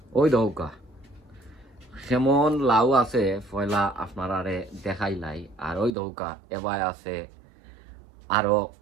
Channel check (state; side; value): drops out; left; at 5.9 s